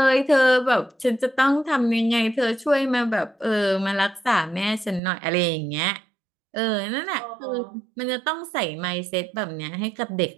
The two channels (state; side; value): drops out; left; at 5.0 s